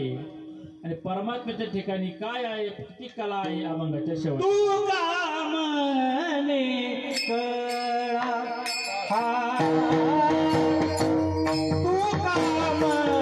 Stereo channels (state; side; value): identical; both; correlation 1.00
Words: आणि परमात्म्याच्या ठिकाणी काय आहे, किती कला आहे अभंगाच्या शेवटी. तू का म्हणे कळा तू का